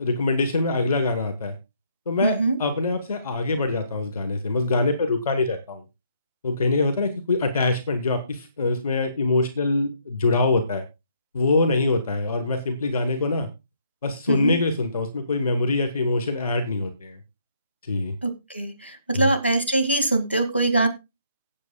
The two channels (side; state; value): both; inverted; correlation -0.69